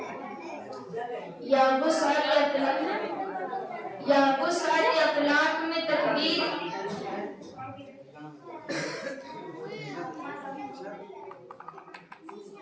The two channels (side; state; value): both; identical; correlation 1.00